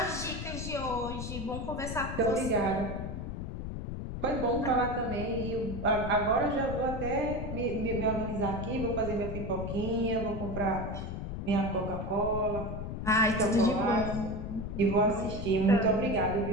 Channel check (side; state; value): left; noise; rumble, 6 dB below the sound